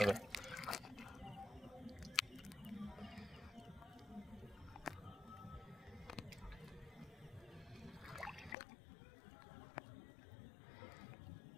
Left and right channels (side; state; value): right; drops out; at 8.6 s